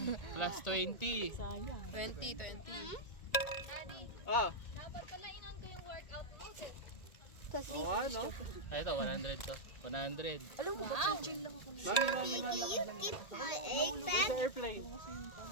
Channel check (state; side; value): late; right; 1.7 ms